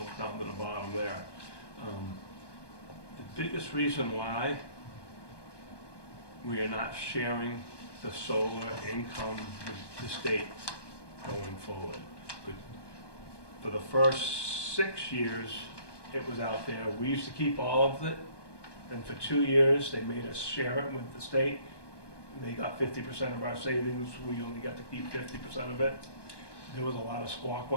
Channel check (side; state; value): right; late; 1.2 ms